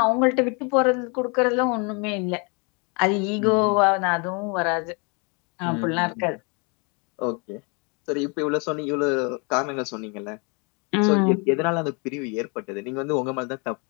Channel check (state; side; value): quieter; right; 33.0 dB